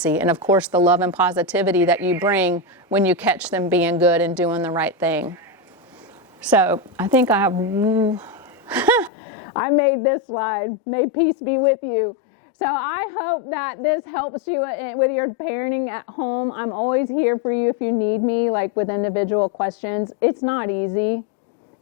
And of course, the love and positivity that you bring when you catch them being good and doing the right thing. So I think I made this slide. May peace be with you. So I hope that this helps you with your parenting at home. I'm always here for you if you need me, with individual questions. It's not easy.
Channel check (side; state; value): right; drops out; at 9.1 s